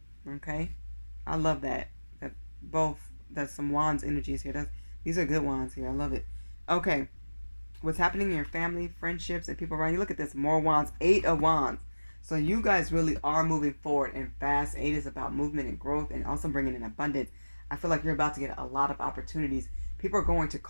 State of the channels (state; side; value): inverted; both; correlation -1.00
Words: Okay? I love that. That's some wands energies here. These are good wands here. I love it. Okay. What's happening in your family, friendships, and people around you? Look at this. More wands. 8 of wands. So you guys really are moving forward and fast. 8 is about movement and growth, and also bringing in abundance. I feel like you're about to get a lot of opportunities. People are going to